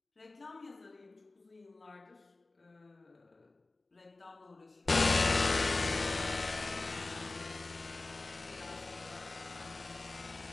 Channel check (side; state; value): right; quieter; 3.2 dB